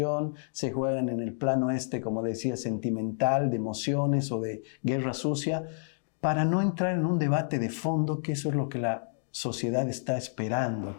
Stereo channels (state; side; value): silent; right; digital silence